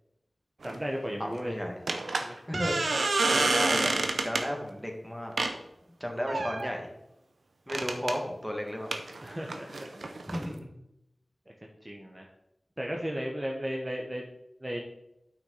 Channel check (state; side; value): normal; both; correlation 0.96